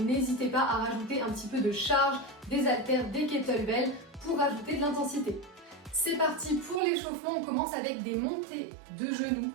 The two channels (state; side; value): drops out; left; at 6.8 s